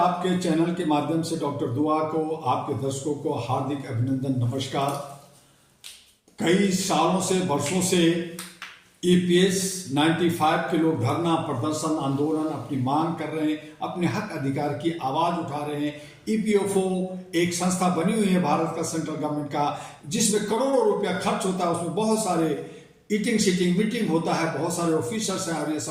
चैनल के माध्यम से डॉक्टर दुआ को, आपके दर्शकों को हार्दिक अभिनंदन, नमस्कार। कई सालों से, वर्षों से ईपीएस 95 के लोग धरना प्रदर्शन आंदोलन अपनी मांग कर रहे हैं, अपने हक अधिकार की आवाज उठा रहे हैं। ईपीएफओ एक संस्था बनी हुई है भारत का, सेंट्रल गवर्नमेंट का, जिसमें करोड़ों रुपया खर्च होता है। उसमें बहुत सारे ईटिंग सीटिंग मीटिंग होता है, बहुत सारे ऑफिसर्स हैं और ये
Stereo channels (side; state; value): both; identical; correlation 1.00